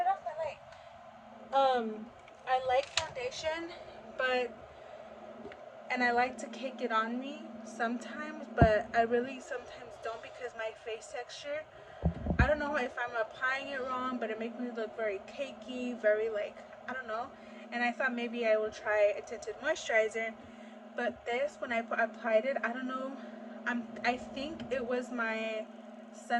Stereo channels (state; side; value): identical; both; correlation 1.00